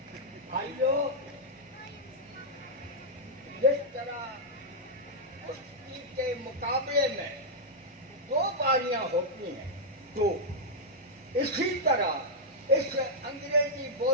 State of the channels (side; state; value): both; normal; correlation -0.06